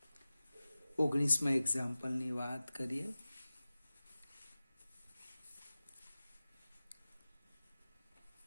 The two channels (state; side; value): inverted; both; correlation -0.97